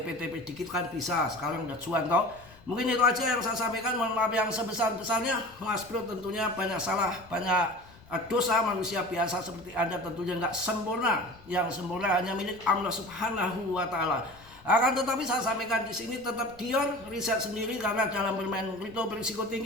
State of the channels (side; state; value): left; noise; rumble, 24 dB below the sound